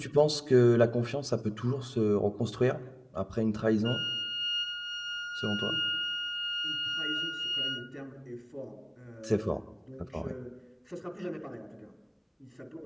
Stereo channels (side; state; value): both; identical; correlation 1.00